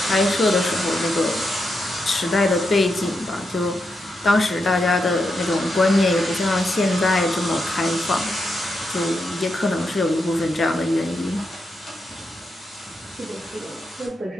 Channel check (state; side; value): normal; both; correlation 0.84